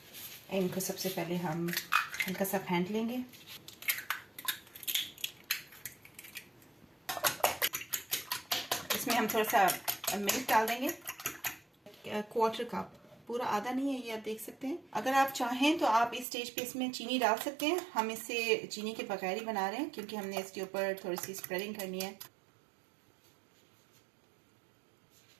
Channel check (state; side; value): drops out; left; at 16.2 s